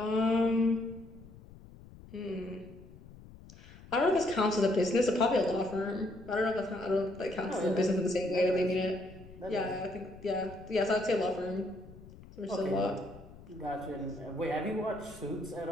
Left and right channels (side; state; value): left; noise; rumble, 19 dB below the sound